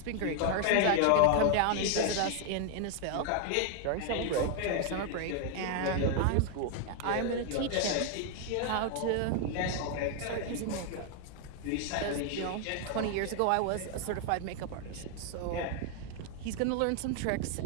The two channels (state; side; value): different; both; correlation 0.00